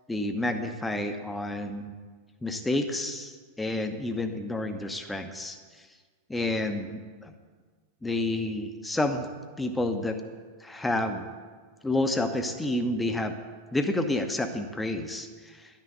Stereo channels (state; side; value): normal; both; correlation 0.61